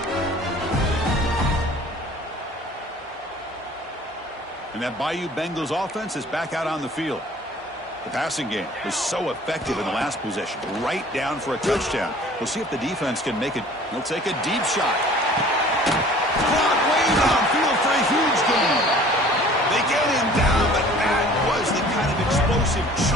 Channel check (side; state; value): both; normal; correlation 0.49